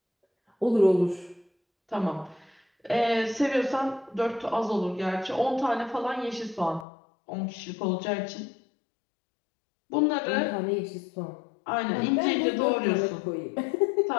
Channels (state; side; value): drops out; right; at 6.9 s